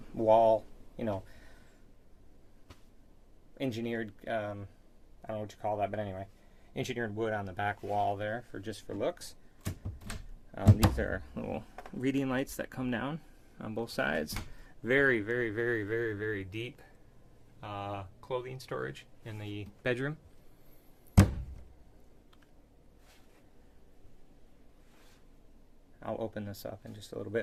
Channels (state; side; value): identical; both; correlation 1.00